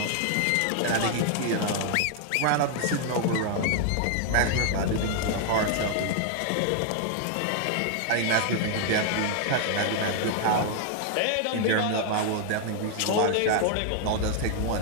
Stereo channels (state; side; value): different; both; correlation 0.00